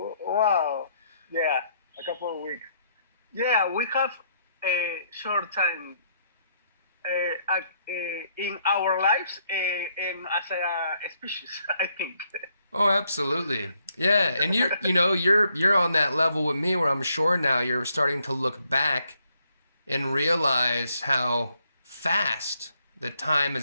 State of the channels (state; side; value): inverted; both; correlation -0.72